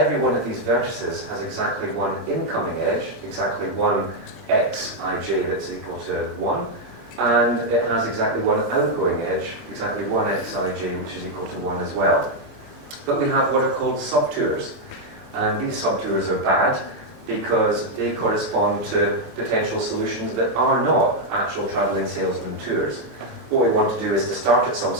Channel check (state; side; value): normal; both; correlation 0.00